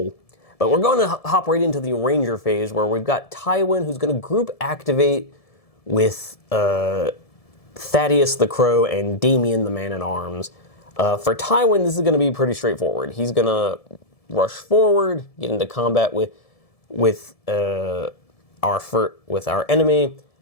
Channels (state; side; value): late; right; 1.7 ms